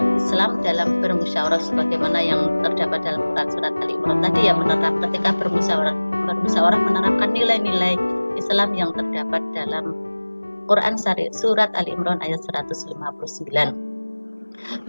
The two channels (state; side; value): inverted; both; correlation -1.00